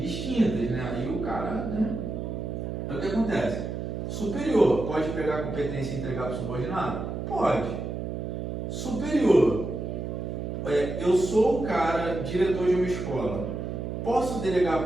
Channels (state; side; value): noise; right; hum, 4 dB below the sound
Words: né? Aí o cara, né? Aí o que acontece? Superior pode pegar a competência e entregar para o subordinado? Pode. Superior, eu sou o cara, diretor de uma escola. Posso delegar